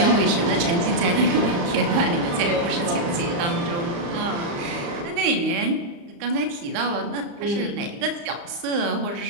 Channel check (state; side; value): late; left; 35 ms